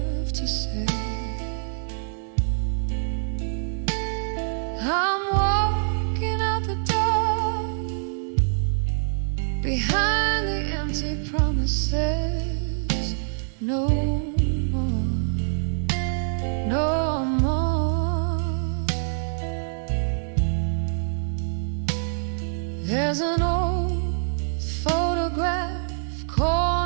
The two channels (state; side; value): silent; left; digital silence